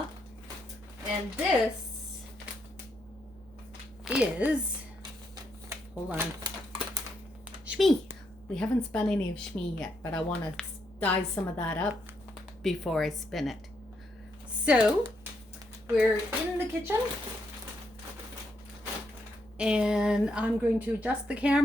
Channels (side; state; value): right; noise; hum, 25 dB below the sound